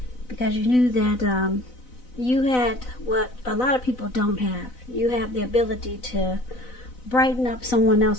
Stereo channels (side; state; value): right; late; 4.0 ms